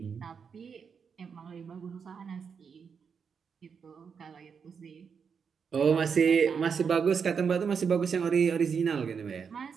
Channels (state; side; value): quieter; left; 6.3 dB